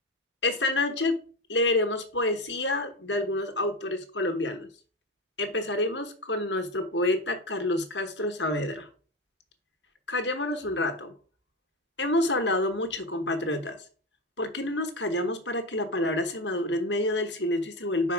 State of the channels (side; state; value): both; normal; correlation 0.19